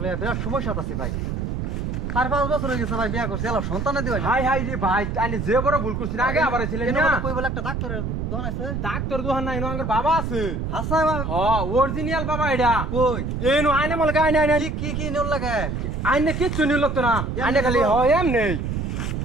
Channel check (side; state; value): right; noise; rumble, 3 dB below the sound